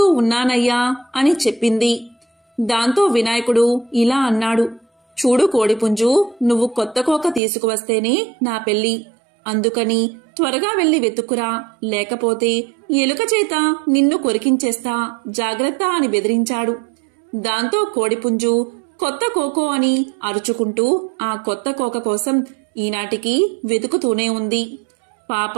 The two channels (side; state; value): left; drops out; at 7.4 s